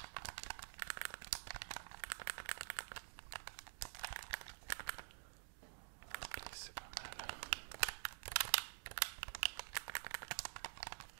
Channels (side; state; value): left; silent; digital silence